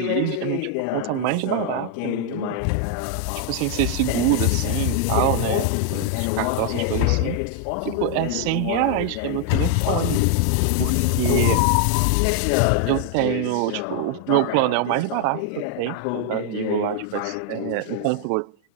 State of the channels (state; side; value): different; both; correlation 0.00